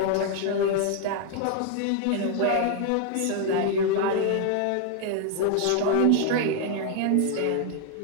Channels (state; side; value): different; both; correlation 0.00